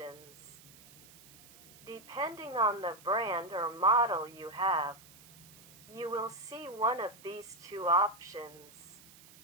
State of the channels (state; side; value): noise; right; hiss, 22 dB below the sound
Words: Depending on the brand or model you have, you will see one of these two options.